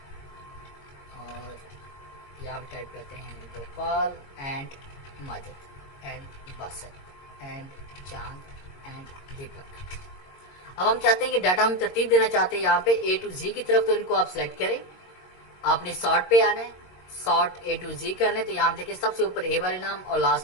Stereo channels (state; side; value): late; right; 22 ms